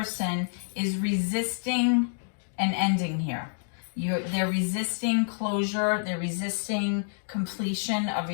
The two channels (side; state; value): right; silent; digital silence